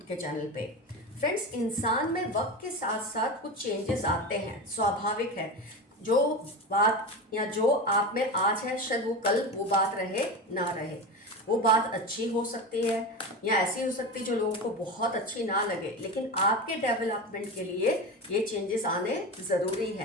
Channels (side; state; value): both; normal; correlation 0.24